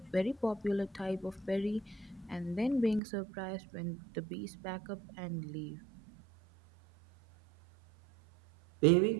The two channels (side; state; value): left; drops out; at 3.0 s